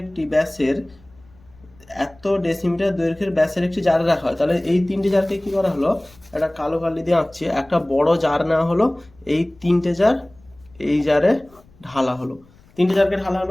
একটি ব্যাসের একটি জারে রাখা হয়, তাহলে এই তিনটি জারকে কি করা হলো, একটা কালো কালি দিয়ে আঁকছি, একটা বড় জার নেওয়া হলো, এই তিনটে জার এই জারে ঢালা হলো, তিনটে জারকে ঢালা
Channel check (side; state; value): left; noise; rumble, 28 dB below the sound